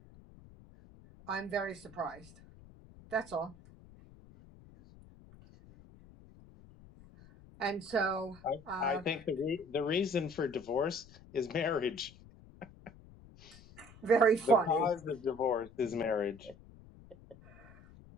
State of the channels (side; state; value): left; noise; rumble, 22 dB below the sound